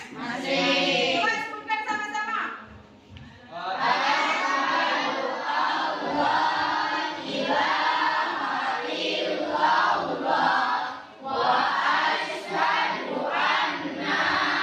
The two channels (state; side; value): identical; both; correlation 1.00